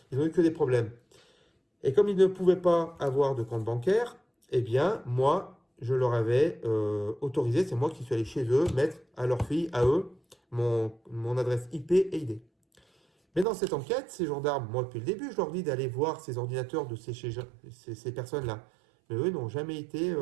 ils n'ont eu que des problèmes. Et comme ils ne pouvaient pas avoir de compte bancaire, eh bien, moi, je leur avais autorisé, c'est moi qui suis allé chez eux, mettre à leur fille, à eux, mon adresse IP et ID. Mais dans cette enquête, ces gendarmes, moi depuis le début, je leur dis d'aller voir ces ordinateurs de ces personnes-là. Mais eux n'ont jamais été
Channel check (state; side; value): drops out; left; at 13.5 s